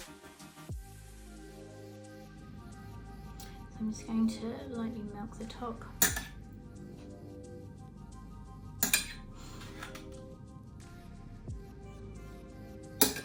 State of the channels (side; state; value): both; identical; correlation 1.00